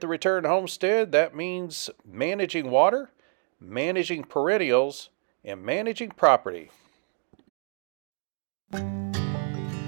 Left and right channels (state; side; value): silent; left; 60 dB below the other